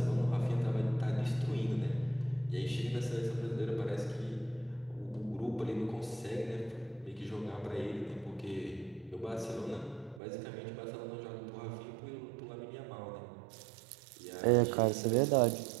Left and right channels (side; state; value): left; drops out; at 10.2 s